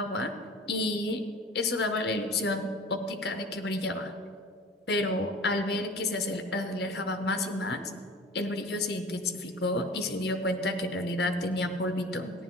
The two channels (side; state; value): both; normal; correlation 0.41